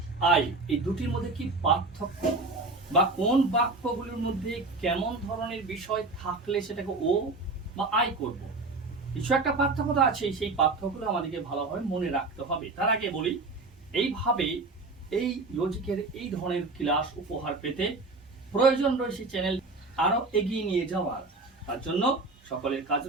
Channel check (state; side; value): quieter; left; 3.5 dB